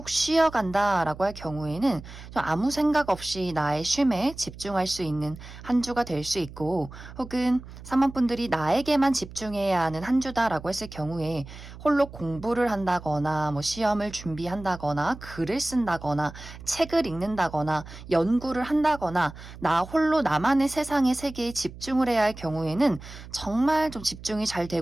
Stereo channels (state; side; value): noise; right; hum, 15 dB below the sound